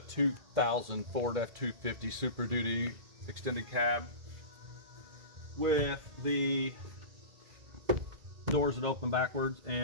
2000 Ford F250 Super Duty extended cab with the doors that open backwards,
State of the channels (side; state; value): left; late; 2.1 ms